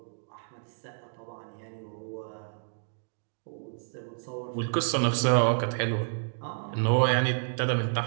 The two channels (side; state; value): left; silent; digital silence